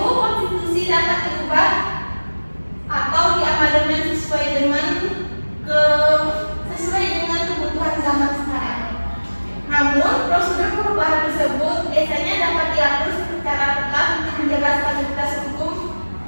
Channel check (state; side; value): inverted; both; correlation -1.00